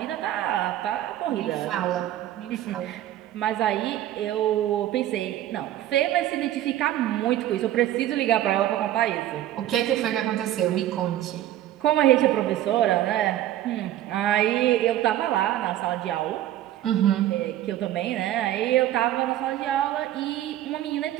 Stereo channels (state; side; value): quieter; left; 13.1 dB